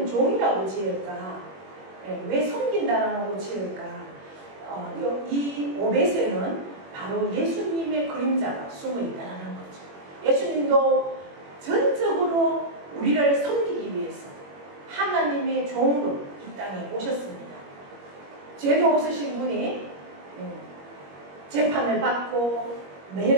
종이라고 지을까? 왜 섬긴다라고 지을까? 이 오벳에는 바로 예수님의 그림자가 숨어 있다는 거죠. 예수님도 전적으로 우리를 섬기기 위해서 하나님의 종으로 이 땅에 오셨습니다. 죄도 없으신 분이 재판을 받고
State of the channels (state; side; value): late; left; 21 ms